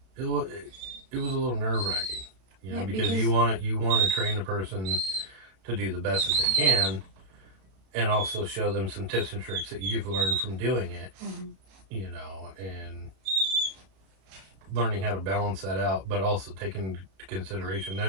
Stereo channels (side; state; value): left; late; 32 ms